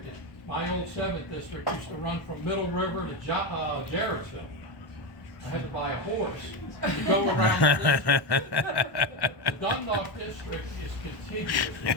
My old 7th district used to run from Middle River to Jarrettsville. I had to buy a horse to go around the district. The Dundalk district is contiguous.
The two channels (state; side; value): late; right; 1.1 ms